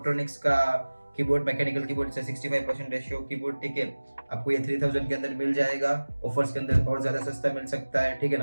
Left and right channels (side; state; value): both; inverted; correlation -1.00